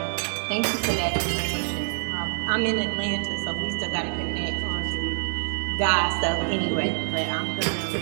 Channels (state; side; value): silent; left; digital silence